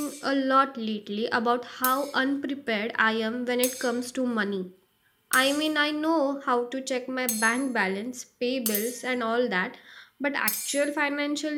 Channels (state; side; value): identical; both; correlation 1.00